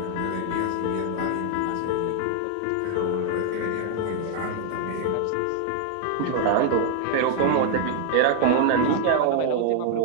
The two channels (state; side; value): different; both; correlation 0.00